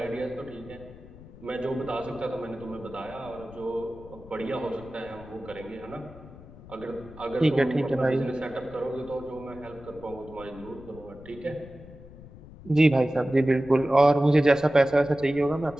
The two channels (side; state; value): left; noise; rumble, 18 dB below the sound